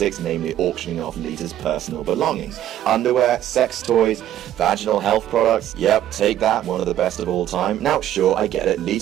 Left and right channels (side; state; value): left; quieter; 12.1 dB